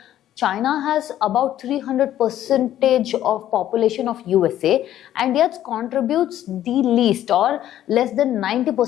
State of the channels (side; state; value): right; quieter; 12.1 dB